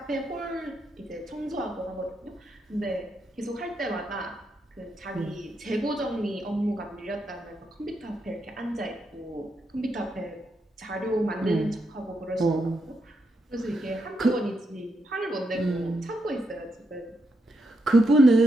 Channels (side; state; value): both; normal; correlation 0.82